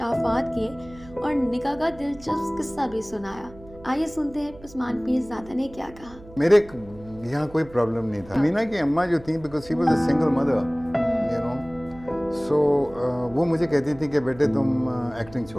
किए और निकाह का दिलचस्प किस्सा भी सुनाया। आइए सुनते हैं उस्मान पीरज़ादा ने क्या कहा। मेरे यहाँ कोई प्रॉब्लम नहीं था। मीना की अम्मा जो थी, because she was a single mother, you know, so वो मुझे कहती थी कि बेटे तुम एक्टिंग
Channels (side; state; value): right; noise; hum, 20 dB below the sound